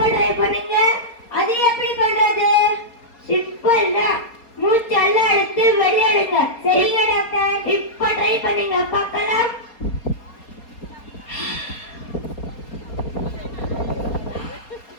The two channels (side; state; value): right; late; 4.3 ms